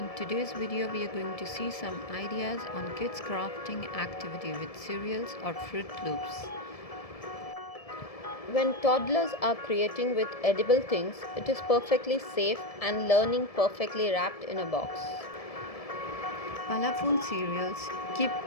today's video we are going to see some ideas on kids crafting activity with cereals or Fruit Loops. When toddlers are creating with edible things, it is perfectly safe and learning perfectly wrapped in a box. Colorful cereals keep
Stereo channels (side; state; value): right; late; 1.7 ms